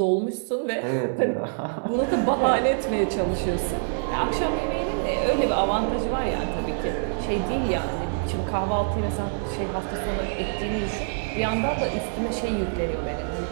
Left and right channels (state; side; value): silent; left; 61 dB below the other